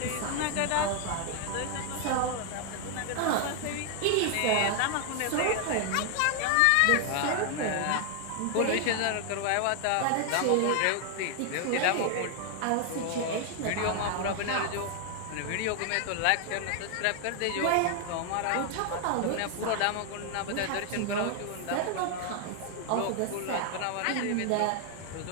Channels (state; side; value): different; both; correlation 0.00